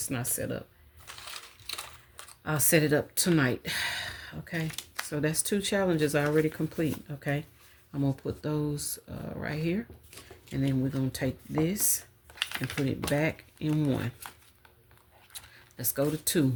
not set up. I'll set it up tonight. Okay? So that's 2 challenges already complete. Okay? I'm going to put those right here. And then we're going to take this and put it back in 1. Let's go to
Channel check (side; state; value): both; identical; correlation 1.00